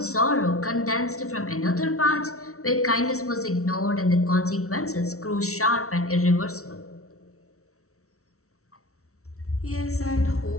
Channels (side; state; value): right; late; 0.64 ms